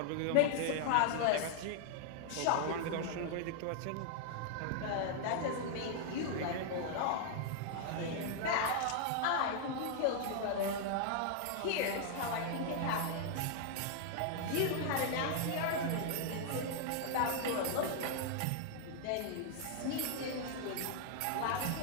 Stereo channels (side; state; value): both; different; correlation 0.00